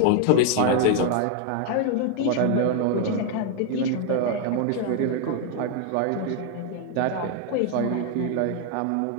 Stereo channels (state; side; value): different; both; correlation 0.00